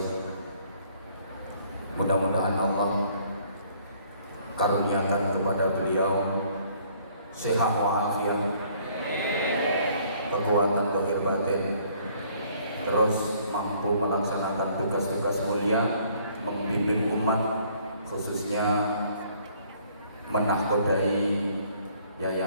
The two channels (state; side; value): inverted; both; correlation -0.61